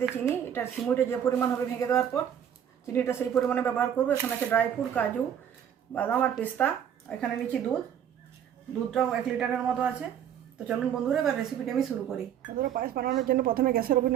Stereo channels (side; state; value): left; quieter; 9.3 dB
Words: চিনি, এটা সিমুইটা যে পরিমাণ হবে ভেঙে দেওয়ার পর চিনিটা সেই পরিমাণে ব্যবহার করবো। এখানে আছে ড্রাই ফ্রুট, কাজু, বাদাম আর পেস্তা। এখানে নিচ্ছি দুধটাও 1 লিটারের মতো আছে। তো চলুন বন্ধুরা, এবার রেসিপিটা আমি শুরু করি। বন্ধুরা, পায়েস বানানোর জন্য প্রথমে গ্যাসের